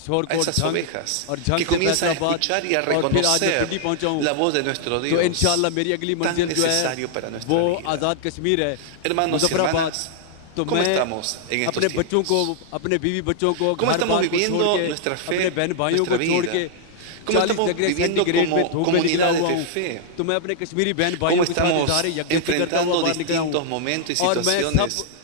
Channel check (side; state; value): both; different; correlation -0.01